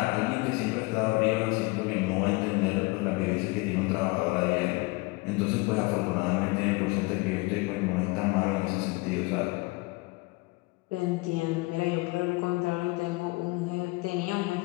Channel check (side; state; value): right; quieter; 25.1 dB